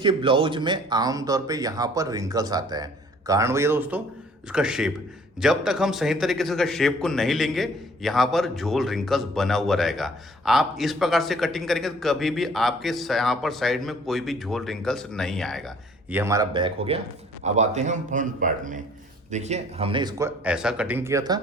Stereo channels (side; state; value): both; normal; correlation 0.56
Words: ब्लाउज में आमतौर पे यहाँ पर रिंकल्स आता है। कारण भैया दोस्तों इसका शेप, जब तक हम सही तरीके से इसका शेप को नहीं लेंगे यहाँ पर झोल रिंकल्स बना हुआ रहेगा। आप इस प्रकार से कटिंग करेंगे तो कभी भी आपके यहाँ पर साइड में कोई भी झोल रिंकल्स नहीं आएगा। ये हमारा बैक हो गया। अब आते हैं हम फ्रंट पार्ट में। देखिए हमने इसको ऐसा कटिंग किया था,